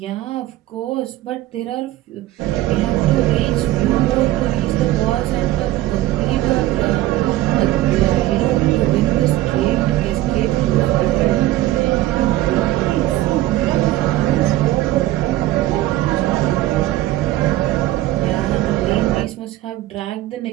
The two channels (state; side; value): quieter; left; 15.6 dB